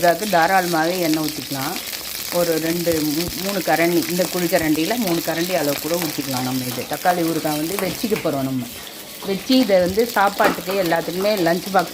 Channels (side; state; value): both; identical; correlation 1.00